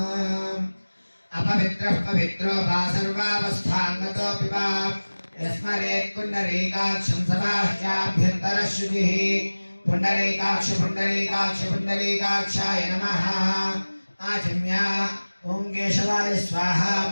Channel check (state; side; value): inverted; both; correlation -1.00